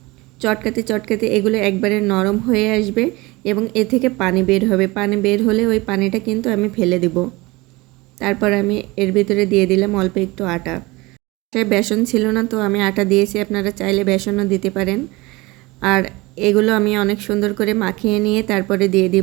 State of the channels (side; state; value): left; quieter; 22.5 dB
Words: চটকাতে চটকাতে এগুলো একবারে নরম হয়ে আসবে এবং এ থেকে পানি বের হবে। পানি বের হলে ওই পানিটা কিন্তু আমি ফেলে দেব। তারপর আমি এর ভিতরে দিয়ে দিলাম অল্প একটু আটা। সে বেসন ছিল না, তো আমি আটা দিয়েছি, আপনারা চাইলে বেসনও দিতে পারেন। আর এগুলো আমি অনেক সুন্দর করে মাখিয়ে নিয়ে তারপরে দিয়ে